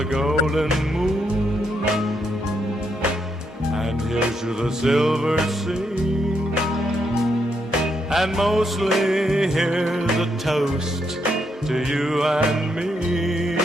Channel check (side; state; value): both; normal; correlation 0.78